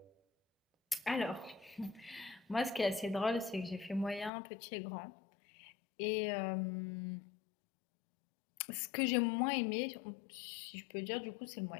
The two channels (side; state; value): right; drops out; at 4.3 s